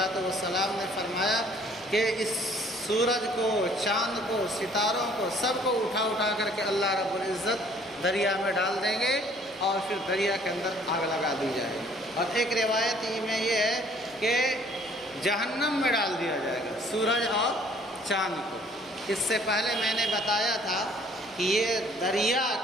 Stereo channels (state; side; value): normal; both; correlation 0.58